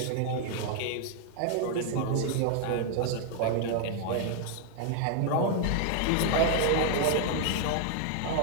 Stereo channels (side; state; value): both; different; correlation 0.00